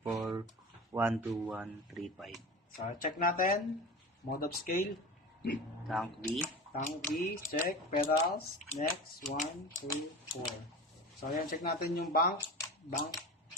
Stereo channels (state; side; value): normal; both; correlation 0.31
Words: 863-160-9184-12135. So, check natin. Mode of scale. Tank B. Tank B, check. Pedals. Next. 1, 2, 4. So, ayan, check natin yung bank. Bank,